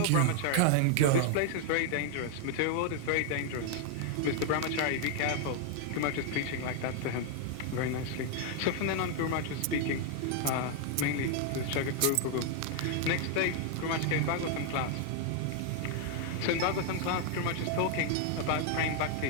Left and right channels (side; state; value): both; different; correlation 0.00